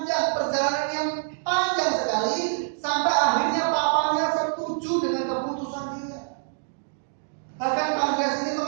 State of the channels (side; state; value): left; silent; digital silence